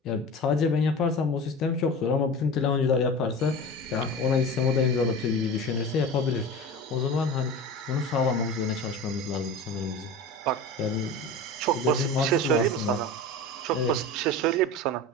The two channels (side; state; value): both; normal; correlation 0.31